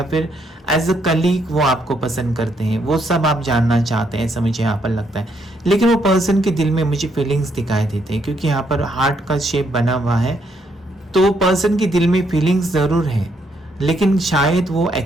फिर एज अ कलीग वो आपको पसंद करते हैं। वो सब आप जानना चाहते हैं, ऐसा मुझे यहाँ पर लगता है। लेकिन वो पर्सन के दिल में मुझे फीलिंग्स दिखाई देते हैं, क्योंकि यहाँ पर हार्ट का शेप बना हुआ है, तो पर्सन के दिल में फीलिंग्स ज़रूर है, लेकिन शायद वो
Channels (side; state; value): both; normal; correlation 0.74